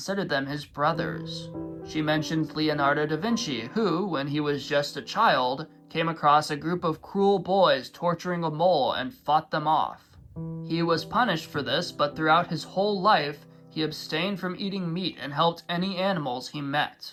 them his brothers. She mentions Leonardo da Vinci, who, when he was just a child, came across a group of cruel boys torturing a mole and fought them off. He was punished for this, but throughout his whole life, he abstained from eating meat and helped any animals he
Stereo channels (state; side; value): identical; both; correlation 1.00